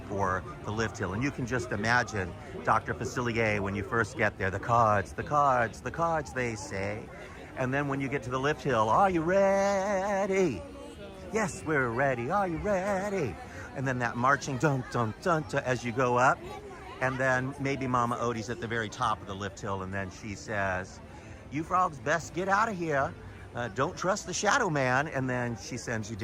the lift hill. And you can just imagine Dr. Facilier when you first get there, the cards, they say. And then when you get to the lift hill, are you ready? Yes, we're ready. Are you ready? And then that marching dun dun dun as you go up. And then maybe Mama Odie's at the very top of the lift hill and then she says, you frogs best get out of here. Don't trust the Shadow Man, and then she sends you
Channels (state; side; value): identical; both; correlation 1.00